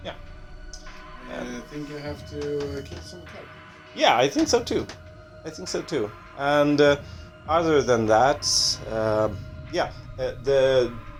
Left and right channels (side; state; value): both; identical; correlation 1.00